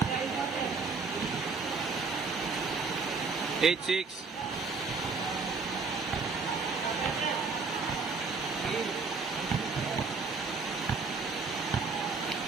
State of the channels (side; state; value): left; quieter; 4.5 dB